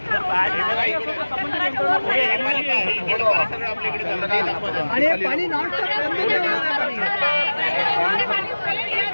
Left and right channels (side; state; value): both; inverted; correlation -1.00